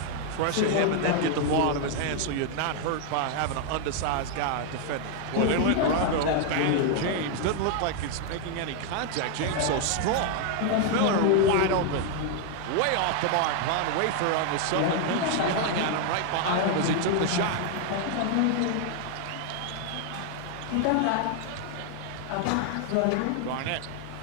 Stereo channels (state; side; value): different; both; correlation 0.00